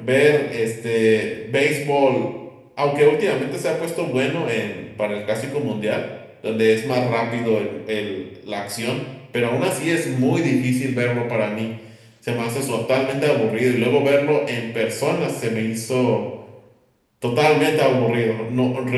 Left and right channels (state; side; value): identical; both; correlation 1.00